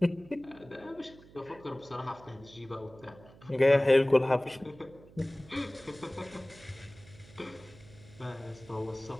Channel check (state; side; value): noise; right; hum, 22 dB below the sound